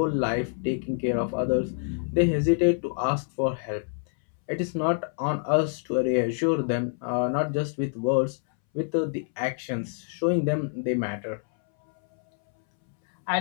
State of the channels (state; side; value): silent; right; 61 dB below the other